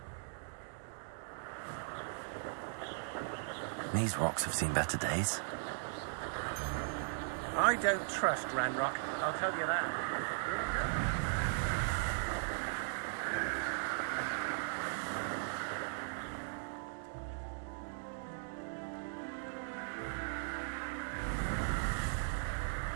These rocks have seen better days. I don't trust Ranrock, I'll tell you that.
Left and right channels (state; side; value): silent; left; digital silence